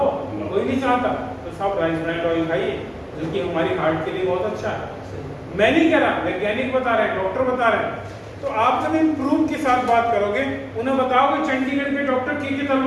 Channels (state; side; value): identical; both; correlation 1.00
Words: कोई नहीं चाहता। तो सब राइस ब्रांड ऑयल खाइए, जो कि हमारी हार्ट के लिए बहुत अच्छा है। मैं नहीं कह रहा, वैज्ञानिक बता रहे हैं, डॉक्टर बता रहे हैं। तो आप जब इन प्रूफ के साथ बात करोगे, उन्हें बताओगे चंडीगढ़ के डॉक्टर के